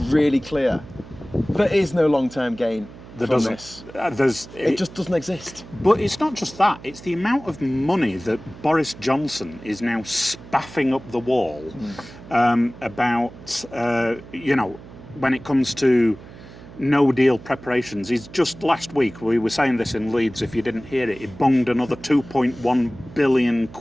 clear. There is no long-term gain. from this. It just doesn't exist. But it's not just that. It's the amount of money that Boris Johnson is now spaffing up the wall about, when it comes to no deal preparations. He's just last week, we were saying this in Leeds, if you didn't hear it, he bunged another 2.1 billion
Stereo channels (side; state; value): right; noise; hum, 17 dB below the sound